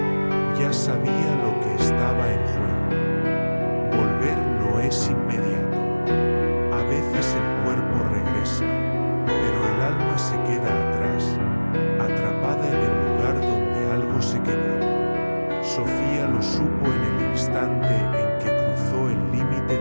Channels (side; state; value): both; inverted; correlation -1.00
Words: ya sabía lo que estaba en juego. Volver no es inmediato. A veces el cuerpo regresa, pero el alma se queda atrás, atrapada en el lugar donde algo se quebró. Sofía lo supo en el instante en que cruzó el límite